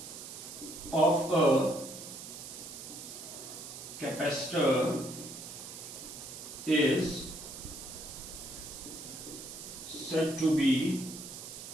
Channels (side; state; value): right; noise; hiss, 11 dB below the sound